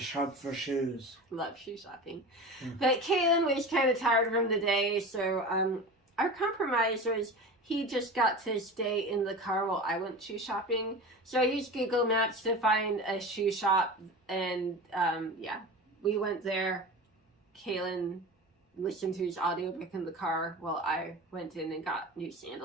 for shoes. Love shoe shopping. But Kaylin was kind of tired from the day, so our compromise was he just got to stay in the car while I went shoe shopping. So I used Google Maps to find a shoe shop, and yeah, we went there. Kaylin listened to his audiobook in the car while I went in and got new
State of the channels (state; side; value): normal; both; correlation 0.31